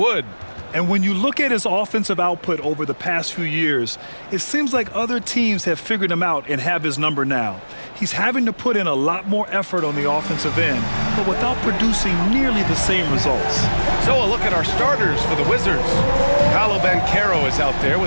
And when you look at his offensive output over the past few years, it seems like other teams have figured him out and have his number now. He's having to put in a lot more effort on the offensive end, but without producing nearly the same results. So a look at our starters for the Wizards. Paolo Banchero is out there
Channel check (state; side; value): inverted; both; correlation -1.00